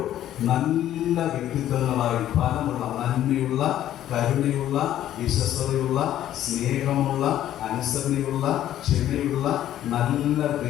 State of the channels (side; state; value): right; quieter; 12.2 dB